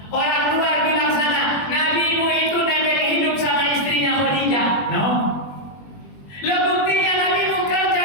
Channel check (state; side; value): late; right; 21 ms